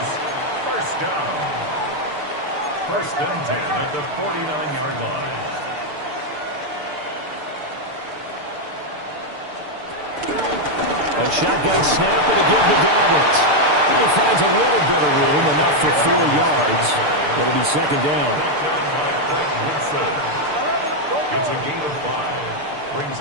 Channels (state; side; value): late; left; 6.8 ms